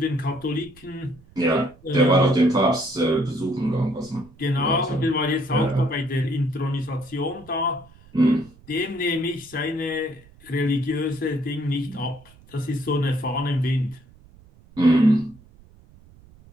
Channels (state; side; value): noise; right; rumble, 25 dB below the sound